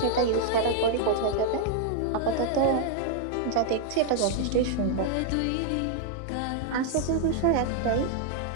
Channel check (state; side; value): different; both; correlation 0.00